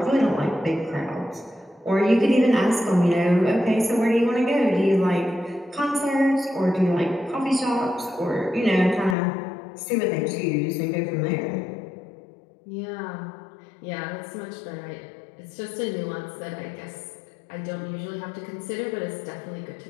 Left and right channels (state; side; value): drops out; right; at 9.2 s